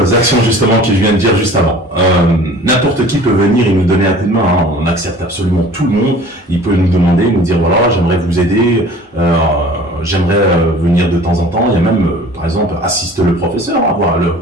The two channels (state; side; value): normal; both; correlation 0.46